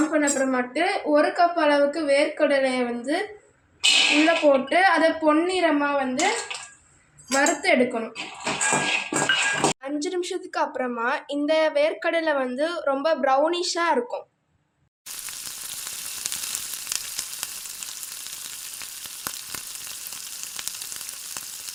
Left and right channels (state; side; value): identical; both; correlation 1.00